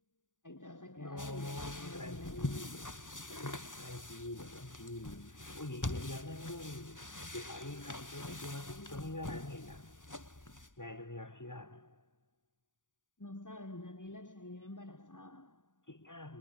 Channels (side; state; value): right; late; 0.87 ms